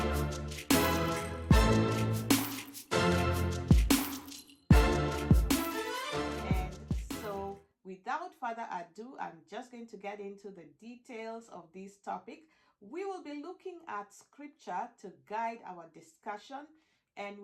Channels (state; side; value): identical; both; correlation 1.00